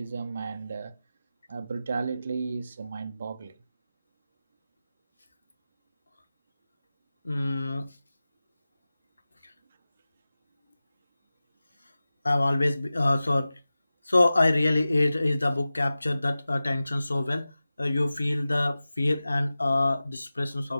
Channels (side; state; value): both; inverted; correlation -0.96